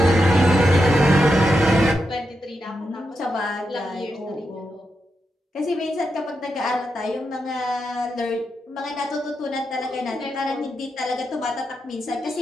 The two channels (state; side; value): normal; both; correlation 0.85